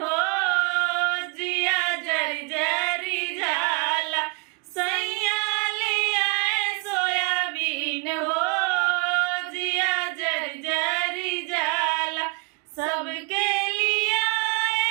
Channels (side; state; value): left; quieter; 32.3 dB